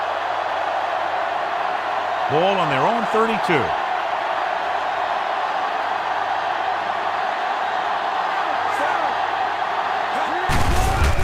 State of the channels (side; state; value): both; identical; correlation 1.00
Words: Ball on their own 32.